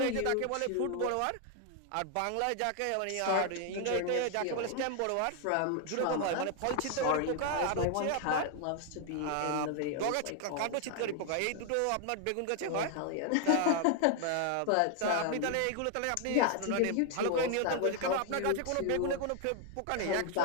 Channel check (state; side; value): different; both; correlation 0.00